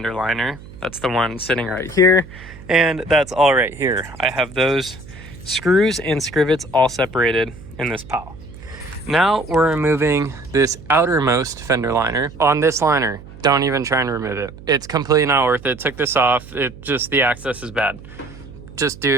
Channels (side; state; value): right; noise; hum, 17 dB below the sound